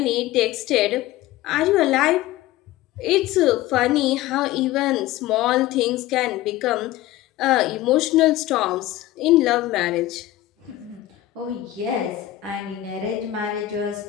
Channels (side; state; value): right; quieter; 14.9 dB